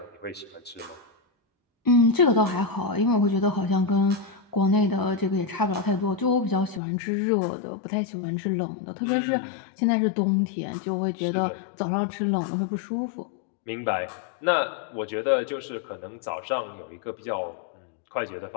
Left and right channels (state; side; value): drops out; right; at 6.8 s